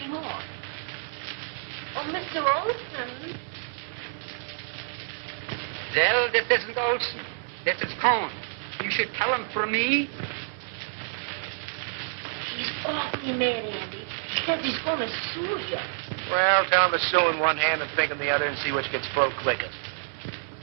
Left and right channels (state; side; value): silent; left; 59 dB below the other